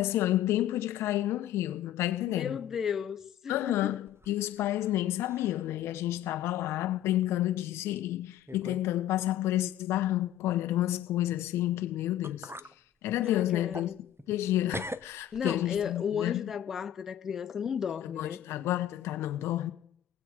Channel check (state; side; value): quieter; right; 12.0 dB